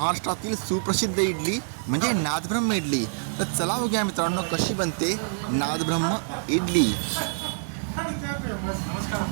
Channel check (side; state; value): left; silent; digital silence